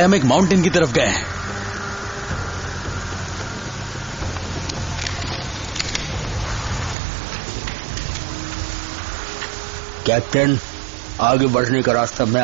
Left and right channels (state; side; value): drops out; left; at 7.0 s